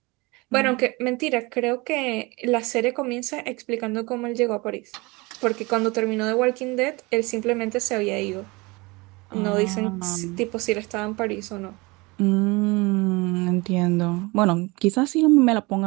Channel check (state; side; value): quieter; left; 24.8 dB